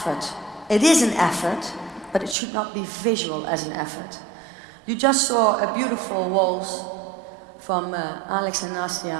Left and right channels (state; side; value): drops out; left; at 2.4 s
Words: It is an effort, but it should not be visual as an effort. You just saw a beautiful waltz from Alex and